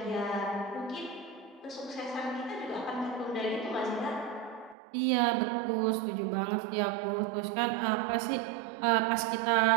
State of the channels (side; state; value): left; drops out; at 4.8 s